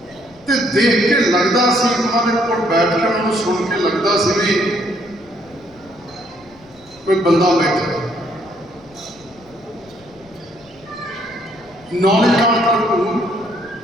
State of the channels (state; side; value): noise; left; rumble, 27 dB below the sound